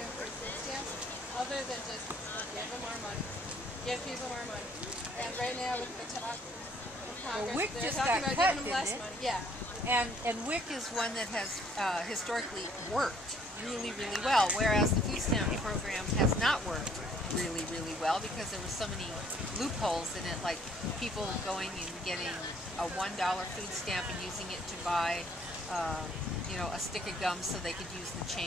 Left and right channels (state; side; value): normal; both; correlation 0.61